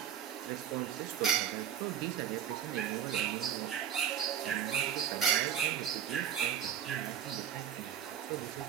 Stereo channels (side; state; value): left; quieter; 9.3 dB